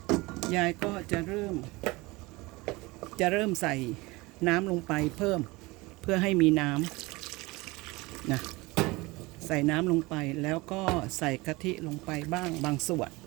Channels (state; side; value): quieter; left; 22.8 dB